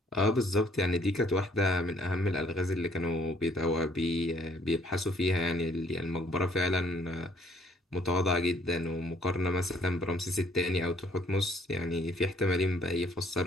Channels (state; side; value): normal; both; correlation 0.63